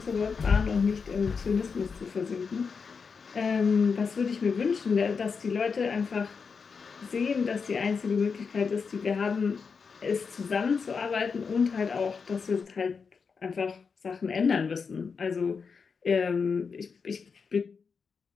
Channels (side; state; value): right; quieter; 5.5 dB